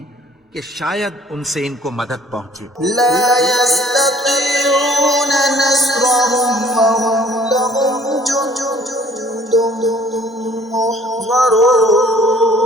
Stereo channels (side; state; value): both; normal; correlation 0.55